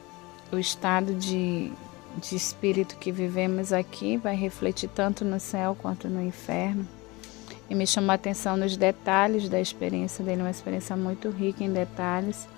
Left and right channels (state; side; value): quieter; right; 23.4 dB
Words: o estado de espírito que vivemos aqui vai refletir tanto no céu quanto no inferno. E me chamou a atenção nos detalhes da experiência dele, uma experiência muito rica em detalhes.